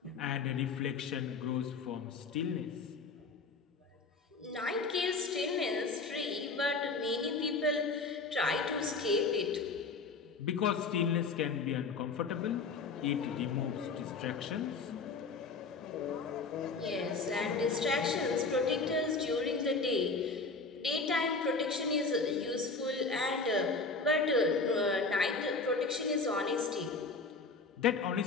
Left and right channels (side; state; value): right; quieter; 4.1 dB